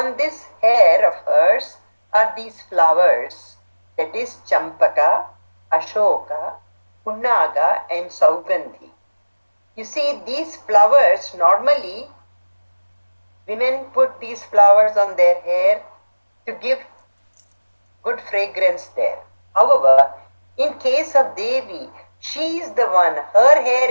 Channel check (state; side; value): inverted; both; correlation -1.00